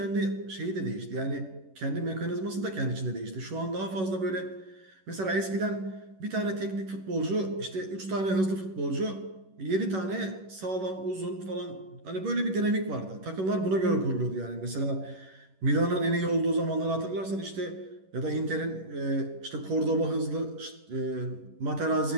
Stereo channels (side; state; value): left; late; 11 ms